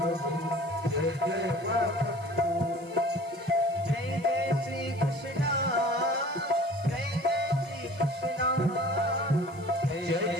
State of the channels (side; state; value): left; noise; hiss, 26 dB below the sound